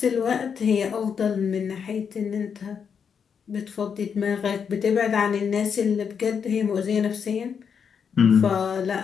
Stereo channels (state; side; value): quieter; right; 6.8 dB